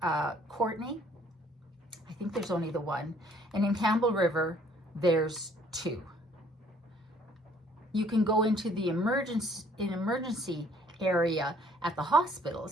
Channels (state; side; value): normal; both; correlation 0.60